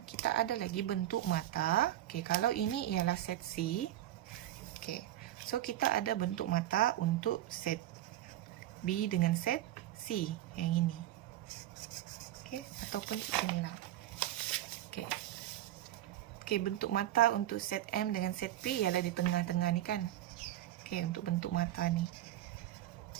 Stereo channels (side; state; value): left; quieter; 13.5 dB